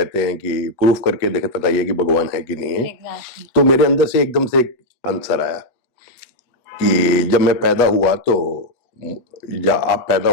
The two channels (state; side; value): late; right; 8.1 ms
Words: हैं कि प्रूफ करके देखे, बताइए कि भगवान है कि नहीं है। एग्जैक्टली। तो मेरे अंदर से एकदम से एक आंसर आया कि जब मैं पैदा हुआ तो, या आप पैदा